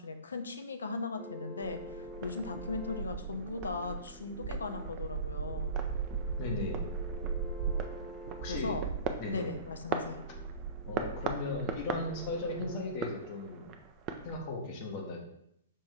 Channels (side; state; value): both; inverted; correlation -0.35